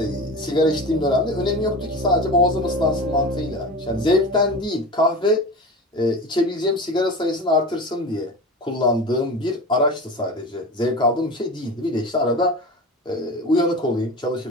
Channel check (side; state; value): both; normal; correlation 0.30